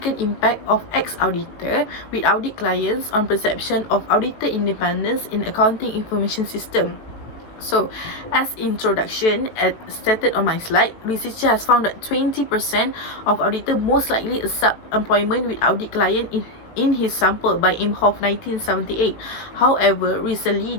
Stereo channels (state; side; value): late; right; 18 ms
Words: impact of ex-auditor with audit clients on perception of auditor independence in accounting information system. So, as introduction, as stated on my slide, researcher has found that 20% of auditor most likely accept employment with audit client in his sample by Imhoff 1978. However, recently